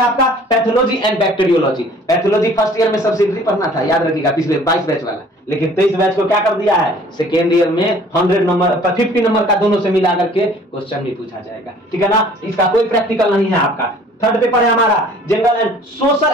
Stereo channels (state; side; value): normal; both; correlation 0.52